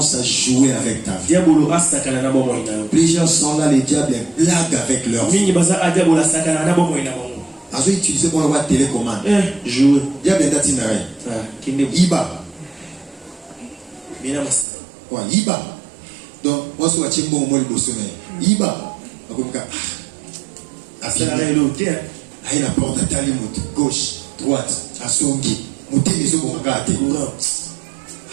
à jouer avec ta vie. Plusieurs sont là, les diables blaguent avec leur vie. Ils ont utilisé pour avoir télécommande. Jouer. Diable est d'atinaré. Iba. Iba. Donc, moi, je suis bon au moins le sommeil. Iba. Aïe la porte à Talimut, gauche, droite, à Songi. Mouté les eaux pour regarder.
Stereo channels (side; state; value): left; drops out; at 14.7 s